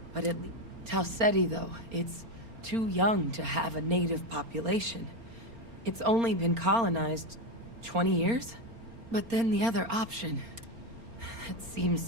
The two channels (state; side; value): late; left; 4.3 ms